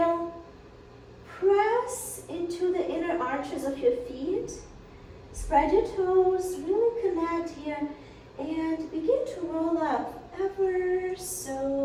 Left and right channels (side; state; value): both; identical; correlation 1.00